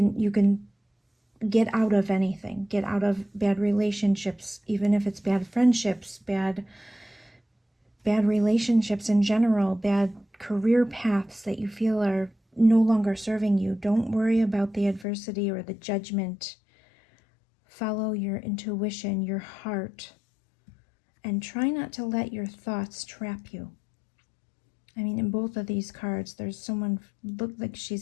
get out of anything. Get out of bad relationships, even if it's bad friendships, bad relationships in general, bad career paths that you feel are no longer serving you. Don't worry about the adversity or the judgment. Follow your intuition, your heart, and try not to let your thoughts trap you. I mean, in both of these cards, there's someone looked like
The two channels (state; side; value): drops out; right; at 15.1 s